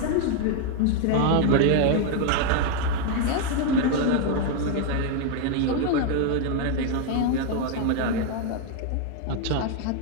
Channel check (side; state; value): both; different; correlation 0.01